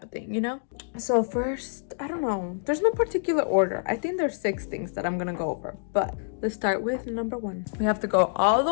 of thing, you know? So first, I don't know, there's no particular order. I think there's 6 things that I'm gonna go over, but let's start with number 1. We have to go all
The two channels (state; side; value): silent; right; digital silence